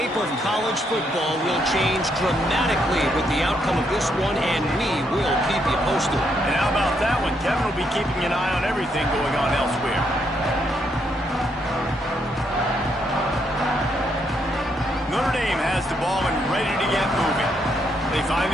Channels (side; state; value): both; normal; correlation 0.76